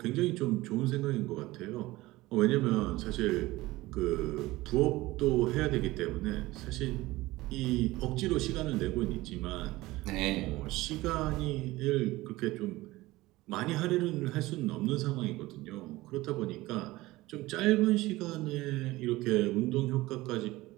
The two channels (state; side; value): quieter; left; 18.9 dB